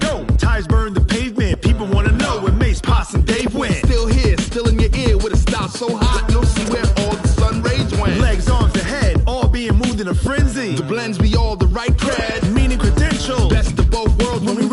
Tires burn the pavement. People want to know where Mace, Poss, and Dave went. Still here, still in your ear with a style so hot, you'll see where all the sun rays went. Legs, arms, the head, all being moved in a frenzy. The blends be all the right cred, meaning credentials. Best of both worlds when we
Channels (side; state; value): both; identical; correlation 1.00